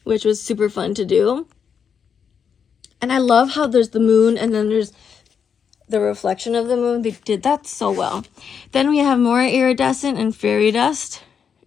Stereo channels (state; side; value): quieter; right; 7.0 dB